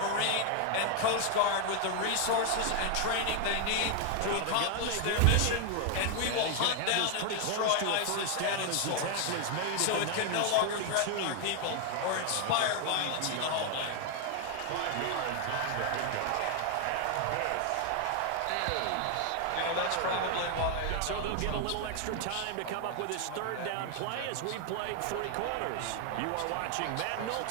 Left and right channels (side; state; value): both; different; correlation 0.00